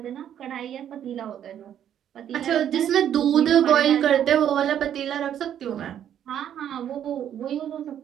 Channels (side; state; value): left; quieter; 10.0 dB